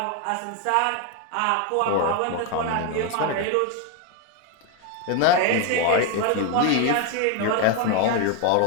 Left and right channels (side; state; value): both; different; correlation 0.01